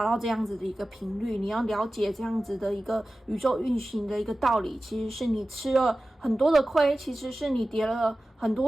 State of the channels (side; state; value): both; normal; correlation 0.95